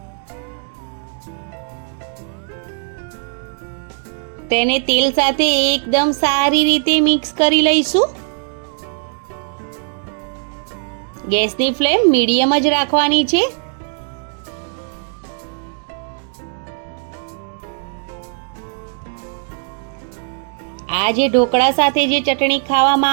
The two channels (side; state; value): left; silent; 58 dB below the other